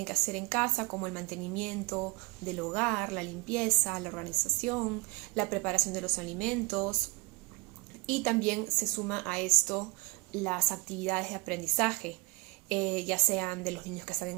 que hacer en casa, como el mantenimiento del hogar, la limpieza, la organización, la preparación de los alimentos, y también se suma a esto las actividades de aprendizaje, ya sean de los niños que están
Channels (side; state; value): left; quieter; 24.5 dB